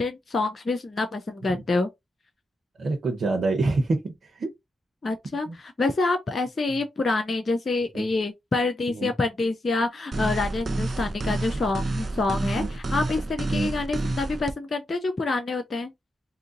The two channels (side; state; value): both; normal; correlation 0.84